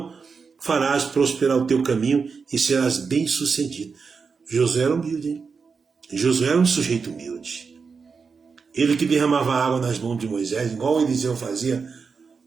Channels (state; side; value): quieter; left; 5.2 dB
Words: farás prosperar o teu caminho e serás bem-sucedido. Josué era humilde, hein? Josué era um sujeito humilde. Ele que derramava água nas mãos de Moisés, igual Eliseu fazia